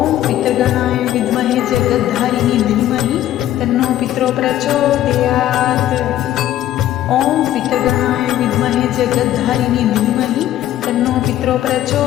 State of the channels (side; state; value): right; quieter; 12.8 dB